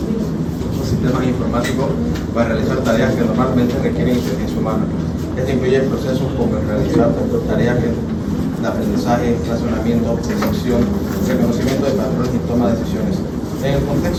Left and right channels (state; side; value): identical; both; correlation 1.00